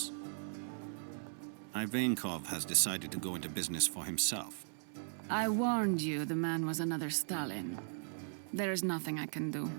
Ivankov has decided to go into business for himself. I warned you the man was another Stalin. There is nothing I can do.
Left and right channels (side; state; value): left; silent; 53 dB below the other